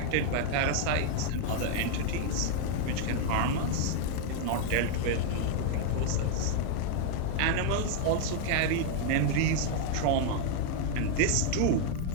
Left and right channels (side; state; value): both; different; correlation 0.00